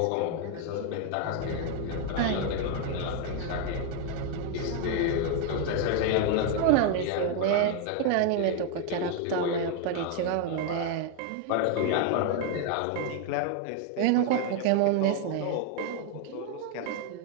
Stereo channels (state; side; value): different; both; correlation 0.01